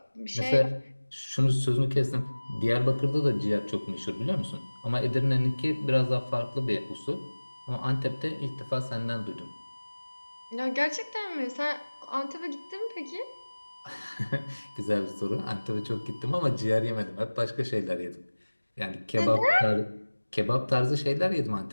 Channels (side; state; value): both; inverted; correlation -1.00